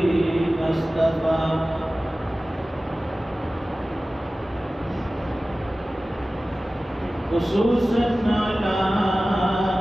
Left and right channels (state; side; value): normal; both; correlation 0.97